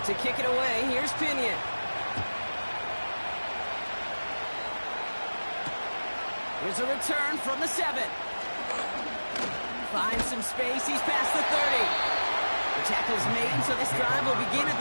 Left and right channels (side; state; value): both; inverted; correlation -1.00